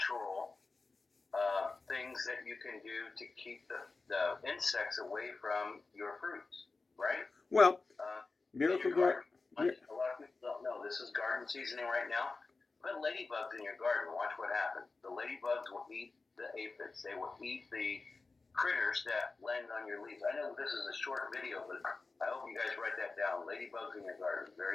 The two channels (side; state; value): right; quieter; 3.9 dB